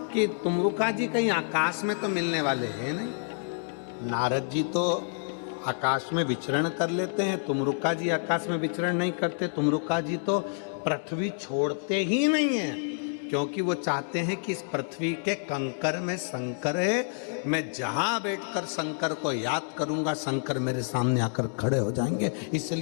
कि तुमरुका जी कहीं आकाश में तो मिलने वाले हैं नहीं। नारद जी तो आकाश में विचरण कर लेते हैं। तुमरुका जी आकाश में विचरण नहीं करते। तुमरुका जी तो पृथ्वी छोड़ते ही नहीं है, क्योंकि वो चाहते हैं कि इस पृथ्वी के कंकर में शंकर है। मैं जहां बैठकर शंकर को याद करूंगा, शंकर मेरे सामने आकर खड़े हो जाएंगे।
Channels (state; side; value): silent; right; digital silence